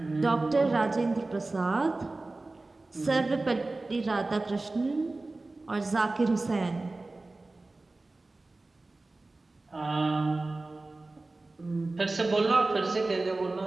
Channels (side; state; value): left; quieter; 3.2 dB